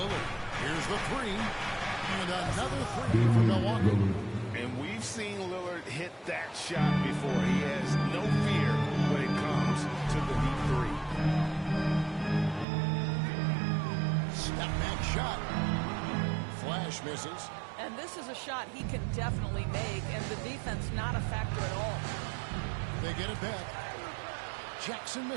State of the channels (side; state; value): left; drops out; at 12.7 s